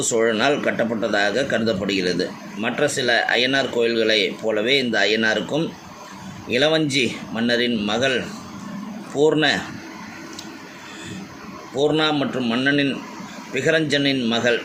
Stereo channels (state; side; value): identical; both; correlation 1.00